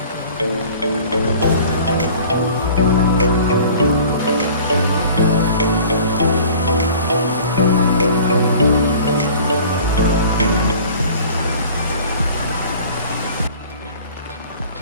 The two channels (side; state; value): both; inverted; correlation -0.47